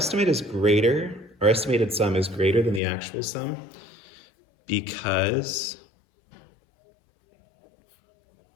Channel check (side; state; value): right; drops out; at 2.8 s